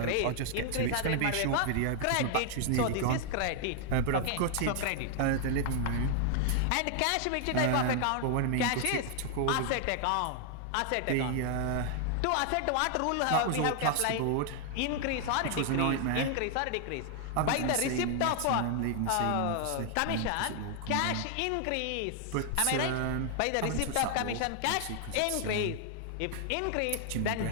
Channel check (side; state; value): both; different; correlation 0.00